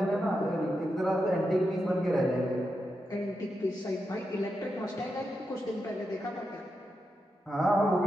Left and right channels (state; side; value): normal; both; correlation 0.87